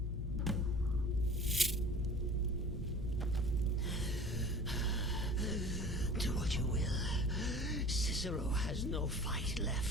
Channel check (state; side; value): normal; both; correlation 0.43